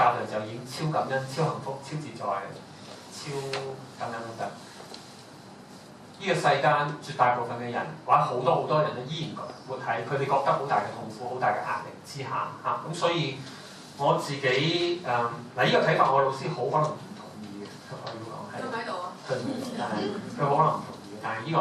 部分就已經超感恩、超幸福、超自在、超等等。呢個世間絕大部分嘅人，或者好多人咧，依然活喺佢哋覺得好大嘅痛苦、好大嘅壓力之下嚇。咁所以我自己呢個睇法，我老師好可能唔同意嘅，我要講係。佢喺度啊。佢唔喺度，但係佢可能唔同意。但係呢個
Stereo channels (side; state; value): both; identical; correlation 1.00